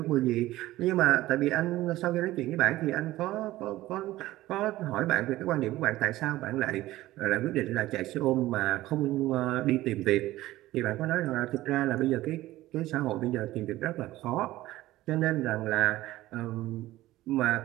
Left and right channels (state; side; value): quieter; left; 16.5 dB